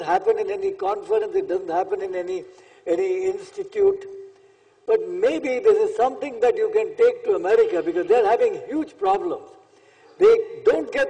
happen in any conference, it doesn't happen in any institute, but maybe this is something that you can take to America, because they're having huge problems. They don't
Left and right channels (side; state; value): both; identical; correlation 1.00